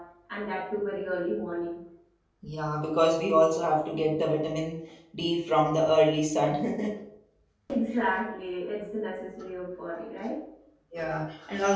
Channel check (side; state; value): both; identical; correlation 1.00